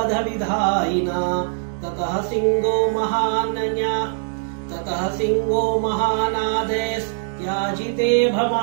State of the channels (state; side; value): silent; left; digital silence